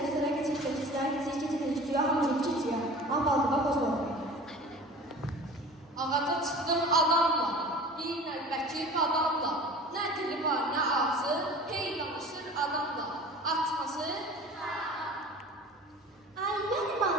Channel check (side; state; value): both; normal; correlation 0.41